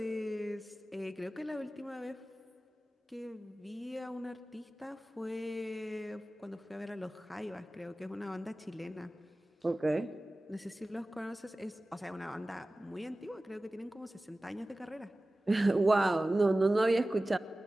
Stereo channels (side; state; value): both; normal; correlation 0.96